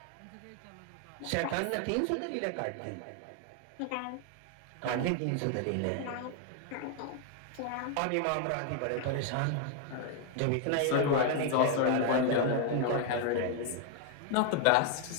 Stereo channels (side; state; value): both; different; correlation 0.00